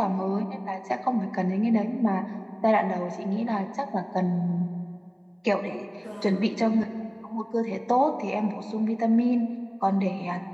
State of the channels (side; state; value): both; identical; correlation 1.00